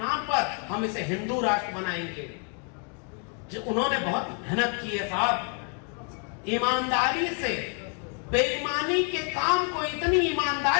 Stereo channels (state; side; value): quieter; right; 39.5 dB